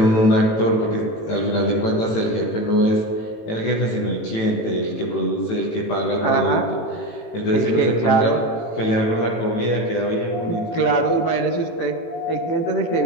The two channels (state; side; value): late; right; 18 ms